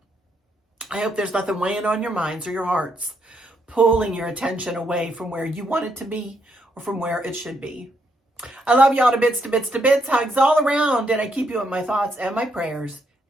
I hope there's nothing weighing on your minds or your hearts, pulling your attention away from where you want it to be or from where it should be. I love y'all to bits, to bits, to bits. Hugs all around, and I keep you in my thoughts and my prayers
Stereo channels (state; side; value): normal; both; correlation 0.76